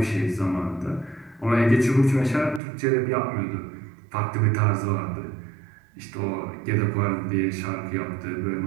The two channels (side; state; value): left; drops out; at 2.6 s